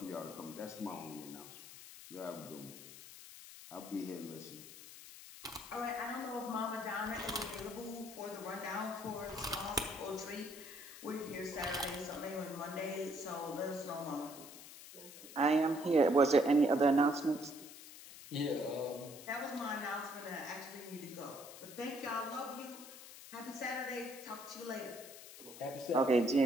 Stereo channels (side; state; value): left; noise; hiss, 15 dB below the sound